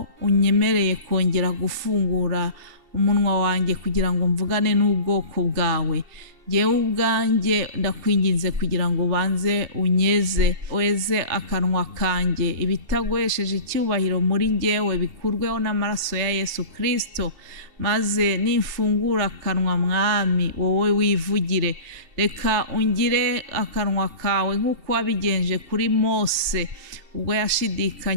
unyemereye kongera gufungura umunwa wanjye kugira ngo mvugane n'ubwoko bwawe. Jyewe ubwanjye ndakwinginze kugira ngo ubanze unyeze, weze akanwa kanjye, ibitagwesheje icyubahiro muri njyewe bikurweho n'amaraso ya Yesu Kristo. Maze nimfungura akanwa Mwami, wowe wivugire. Reka ungire akanwa kawe nk'uko wabigenje kuri Mose ubwo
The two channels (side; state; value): left; late; 2.7 ms